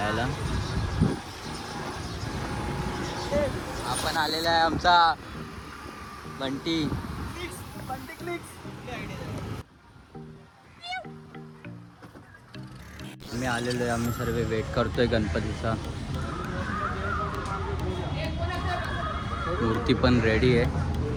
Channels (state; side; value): identical; both; correlation 1.00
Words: आपण आलेला आहे आमचा बंटी. आम्ही आलेलो आहे, आम्ही सर्व वेट करतोय गणपतीचा. मूर्ती पण रेडी आहे,